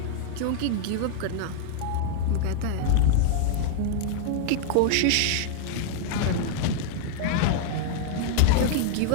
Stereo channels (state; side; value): different; both; correlation -0.01